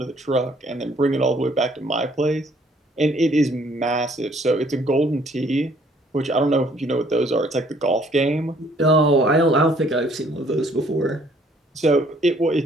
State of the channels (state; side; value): normal; both; correlation 0.62